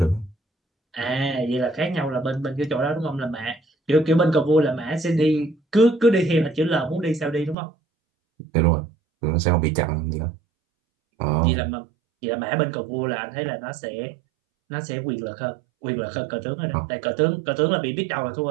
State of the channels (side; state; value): left; drops out; at 7.6 s